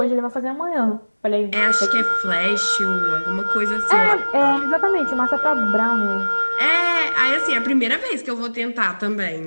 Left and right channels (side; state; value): both; inverted; correlation -1.00